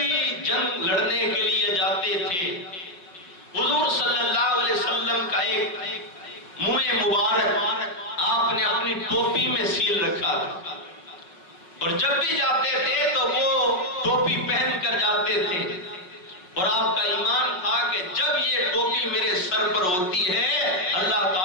جنگ لڑنے کے لیے جاتے تھے، حضور صلی اللہ علیہ وسلم کا ایک منہ مبارک آپ نے اپنی ٹوپی میں سیل رکھا تھا، اور جب بھی جاتے تھے تو وہ ٹوپی پہن کر جاتے تھے، اور آپ کا ایمان تھا کہ جب یہ ٹوپی میرے سر پر ہوتی ہے اللہ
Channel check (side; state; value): right; late; 5.6 ms